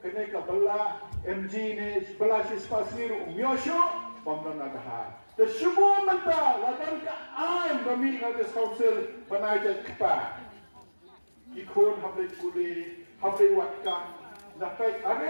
kena kabela MG ni sebelah spasi ro umyosyo, pamdan ada. Tersemua mentah ladan ka ain kami ada council banai kepa. Ikon hablai kuli, hablai watkan, dapat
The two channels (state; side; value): inverted; both; correlation -1.00